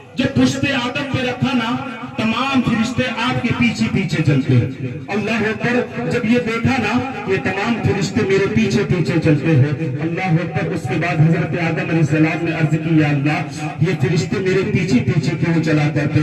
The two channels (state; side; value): identical; both; correlation 1.00